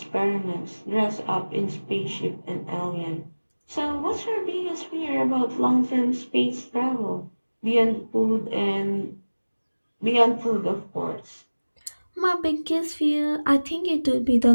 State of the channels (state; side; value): inverted; both; correlation -1.00